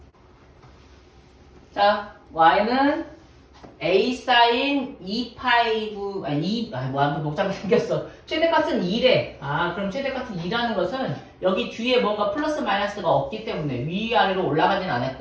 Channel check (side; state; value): both; identical; correlation 1.00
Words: 자, y는 a sin 2파이 9, 아무튼 복잡하게 생겼어. 최대값은 2래. 그럼 최대값은 2라는 것은 여기 뒤에 뭔가 플러스 마이너스가 없기 때문에 위아래로 올라가진